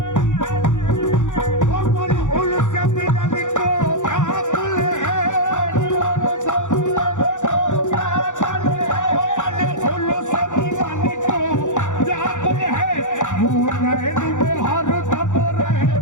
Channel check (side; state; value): right; late; 0.85 ms